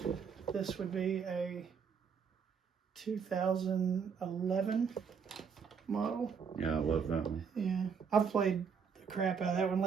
This would be a 2011 model. Yeah, I love that one. Yeah, I've played the crap out of that one.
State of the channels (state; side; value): quieter; left; 6.4 dB